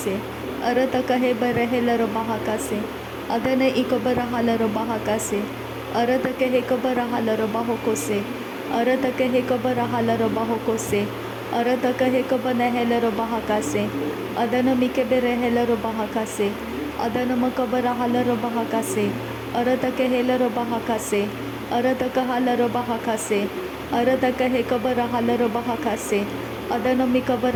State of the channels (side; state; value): both; identical; correlation 1.00